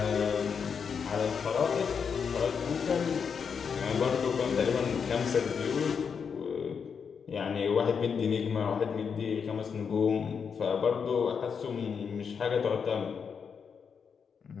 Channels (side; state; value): right; quieter; 6.4 dB